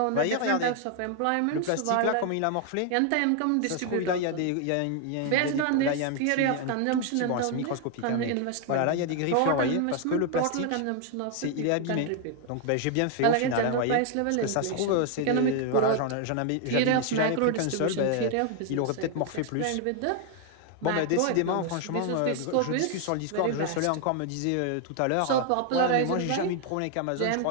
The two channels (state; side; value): different; both; correlation 0.01